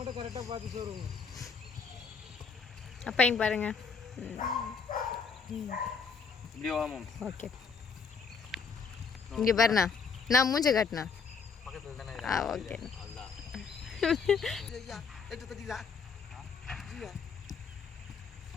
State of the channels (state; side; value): quieter; right; 5.4 dB